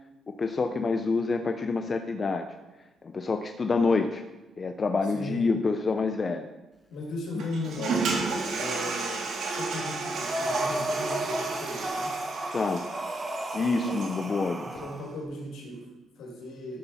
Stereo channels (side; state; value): both; normal; correlation 0.82